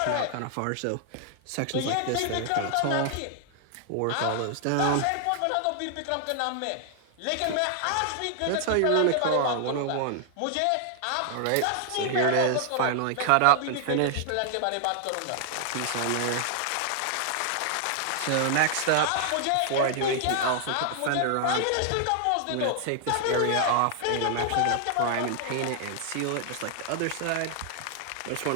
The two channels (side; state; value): both; different; correlation 0.00